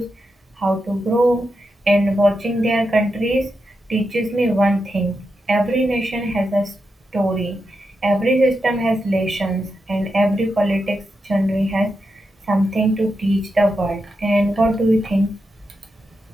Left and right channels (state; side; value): normal; both; correlation 0.87